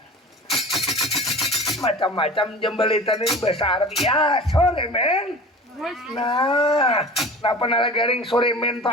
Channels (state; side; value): normal; both; correlation 0.38